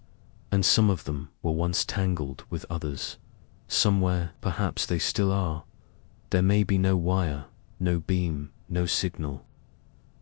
and some of them were once tangled with others. Somewhere, perhaps they still are. There may be no wire, no beam, no signal,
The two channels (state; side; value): quieter; right; 37.0 dB